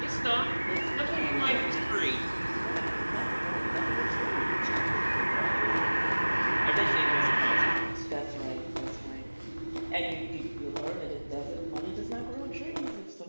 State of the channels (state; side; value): inverted; both; correlation -1.00